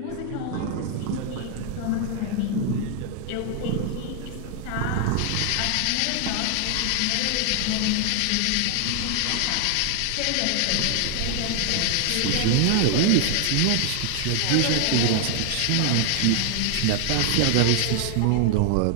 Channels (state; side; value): different; both; correlation 0.00